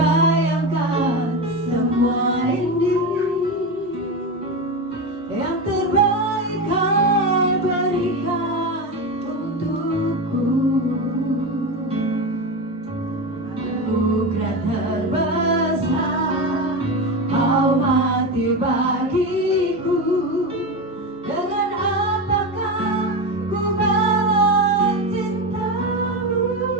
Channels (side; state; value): both; normal; correlation 0.19